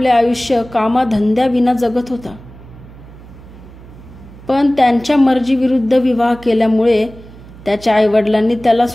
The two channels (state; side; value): noise; right; hum, 19 dB below the sound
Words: आयुष्य कामाधंद्याविना जगत होता. पण त्यांच्या मर्जीविरुद्ध विवाह केल्यामुळे त्याच्या आईवडिलांनी त्याला